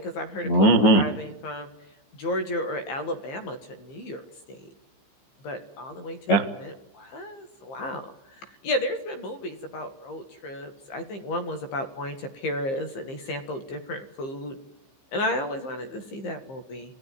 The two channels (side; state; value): right; late; 15 ms